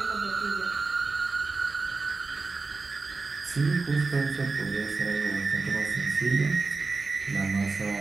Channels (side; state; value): left; quieter; 4.0 dB